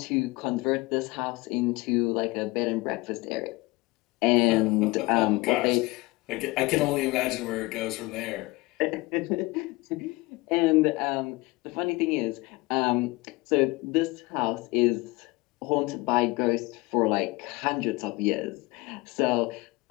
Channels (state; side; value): quieter; right; 22.8 dB